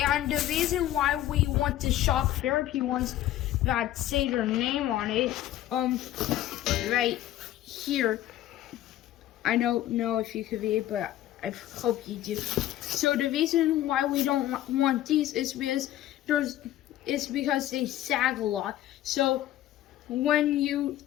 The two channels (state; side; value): quieter; right; 13.4 dB